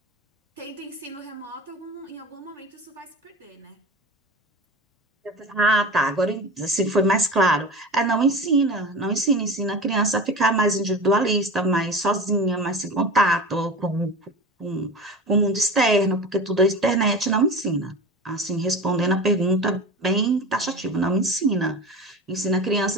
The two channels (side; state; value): both; normal; correlation 0.32